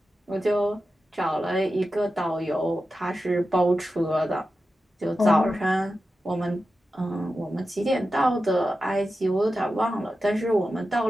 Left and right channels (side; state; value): both; normal; correlation 0.92